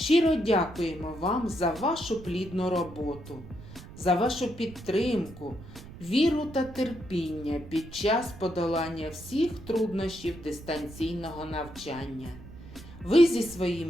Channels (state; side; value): noise; right; rumble, 16 dB below the sound